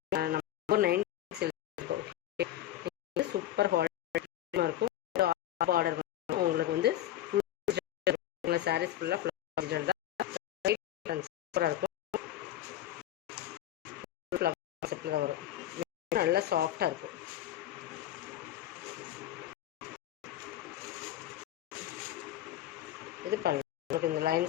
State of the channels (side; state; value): right; quieter; 13.0 dB